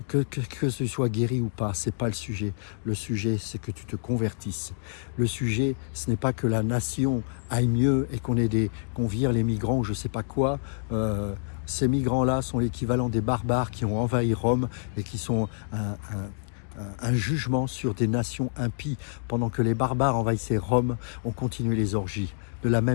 Que tu sois guéri ou pas, ce n'est pas le sujet. Le sujet, c'est que tu te convertisses. Le sujet, ce n'est pas que la nation aille mieux et qu'on vire les migrants ou je ne sais pas quoi. Ces migrants-là sont l'équivalent des barbares qui ont envahi Rome et qui sont un jugement sur des nations impies. Pendant que les barbares envahissaient Rome, on continue les orgies. de la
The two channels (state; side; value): silent; right; digital silence